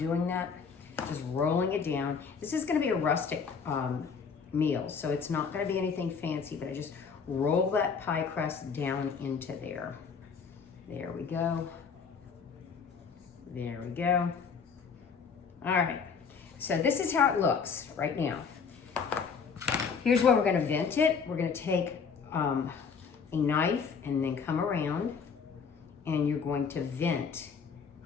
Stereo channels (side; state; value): right; quieter; 5.9 dB